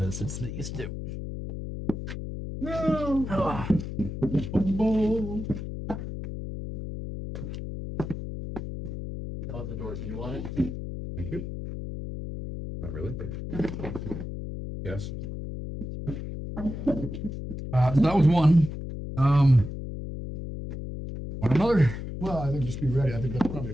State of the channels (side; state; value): left; noise; hum, 7 dB below the sound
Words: is. It's these two. No. Ah. That was the door. Do you want it? Thank you. Not really. Yes. So that was one. Want another? Well, I think just be ready. I think that's probably